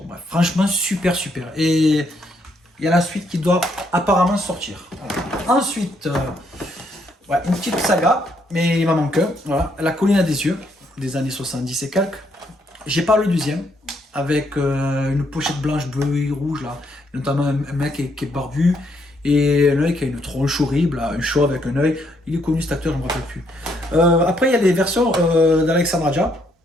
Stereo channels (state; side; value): normal; both; correlation 0.73